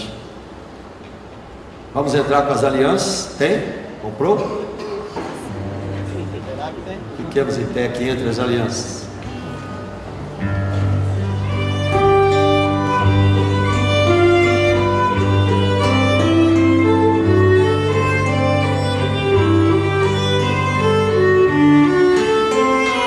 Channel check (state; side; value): identical; both; correlation 1.00